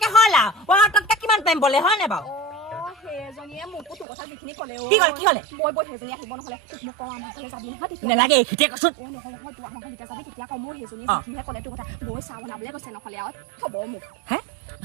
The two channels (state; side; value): drops out; left; at 4.0 s